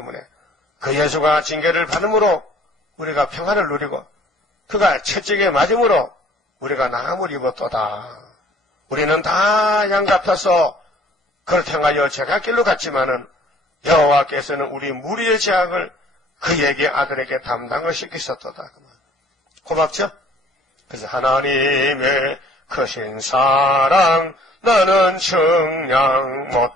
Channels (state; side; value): normal; both; correlation 0.54